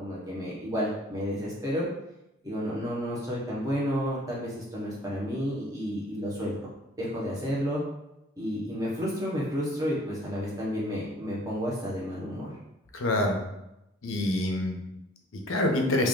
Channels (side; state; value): both; normal; correlation 0.55